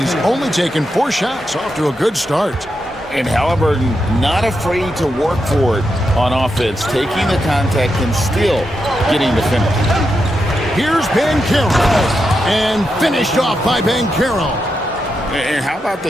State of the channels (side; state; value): both; normal; correlation 0.85